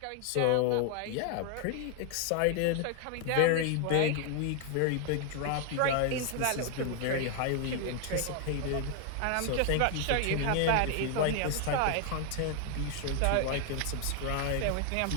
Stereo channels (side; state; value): both; different; correlation 0.00